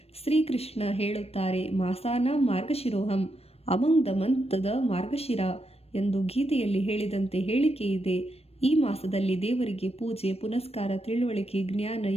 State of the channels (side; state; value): right; late; 0.29 ms